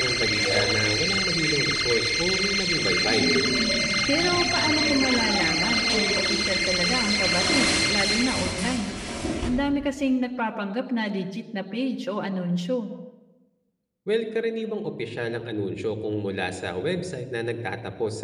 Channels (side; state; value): both; identical; correlation 1.00